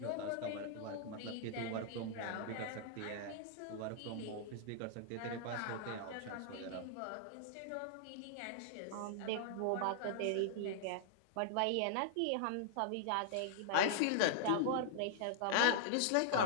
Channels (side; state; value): both; different; correlation -0.01